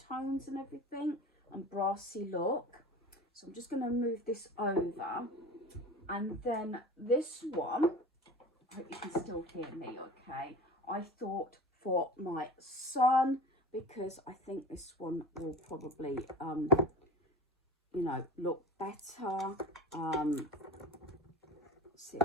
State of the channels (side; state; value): both; normal; correlation 0.35